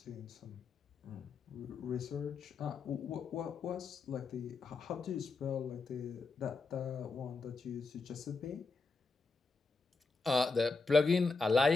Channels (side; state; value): right; quieter; 4.1 dB